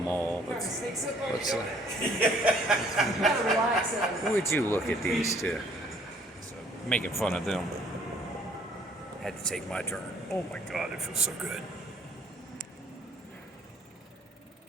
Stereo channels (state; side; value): normal; both; correlation 0.60